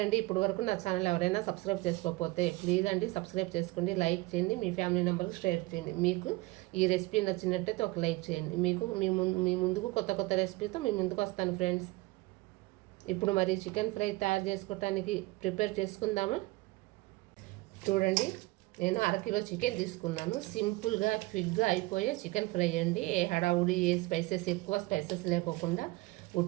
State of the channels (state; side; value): quieter; left; 21.7 dB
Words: ఇప్పటి వరకు నా ఛానల్ ఎవరైనా సబ్స్క్రైబ్ చేసుకోకపోతే ప్లీజ్ అండి సబ్స్క్రైబ్ చేసుకోండి, లైక్ చేయండి, మీ ఫ్యామిలీ మెంబర్కి షేర్ చేయండి. మీకు ఈ రెసిపీ నచ్చినట్టయితే ఒక లైక్ చేయండి. మీ ముందుకు కొత్త కొత్త రెసిపీతో మీ ముందుకు వస్తాను ఫ్రెండ్స్. ఇప్పుడు మరి చికెన్ ఫ్రై తయారు చేసుకోవటానికి ప్రిపేర్ చేసుకుందామా? చూడండి, నేను అరకిలో చికెన్ తీసుకున్నాను. సింపుల్గా క్విక్గా అయిపోయే చికెన్ ఫ్రై అండి. ఏ హడావుడి, ఏ స్పైసెస్, ఎక్కువ స్పైసెస్ లేకోకుండా